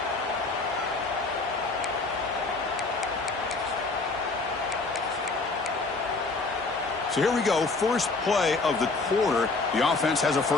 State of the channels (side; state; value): right; quieter; 3.7 dB